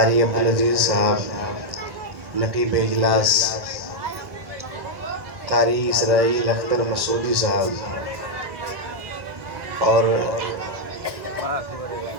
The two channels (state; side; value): late; left; 1.1 ms